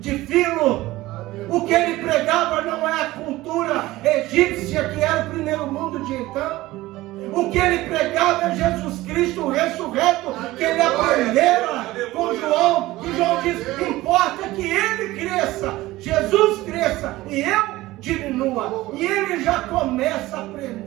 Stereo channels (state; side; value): quieter; left; 17.9 dB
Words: de Filo. O que ele pregava não é a cultura egípcia, que era o primeiro mundo de então. O que ele pregava é Jesus Cristo ressurreto, que ele aprendera com João. E João diz, importa que ele cresça, Jesus cresça e eu diminua. E ele já começa